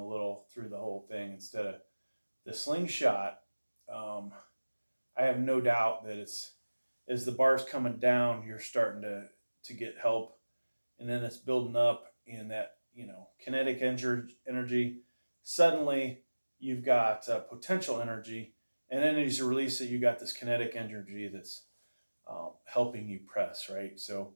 little through the whole thing instead of the slingshot. I have no doubt that as the bar's coming down, you're starting to get help, and then it's building up in that kinetic energy. Suddenly you've got potential energy, and then as you release it, you got this kinetic energy that's helping you press, right? So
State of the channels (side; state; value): both; inverted; correlation -1.00